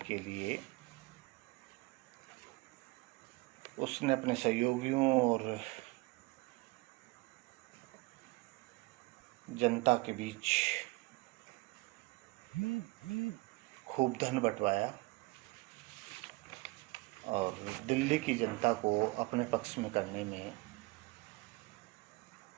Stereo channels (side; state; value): left; quieter; 23.6 dB